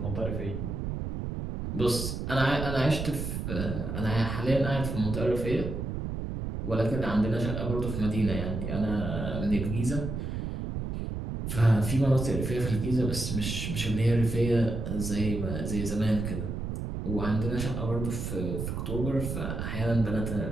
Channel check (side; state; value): right; noise; rumble, 4 dB below the sound